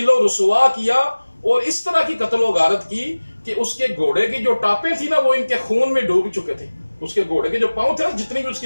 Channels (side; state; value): both; inverted; correlation -1.00